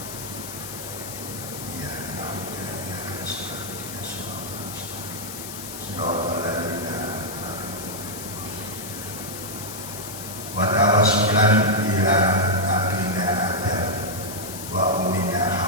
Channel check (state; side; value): noise; left; hiss, 9 dB below the sound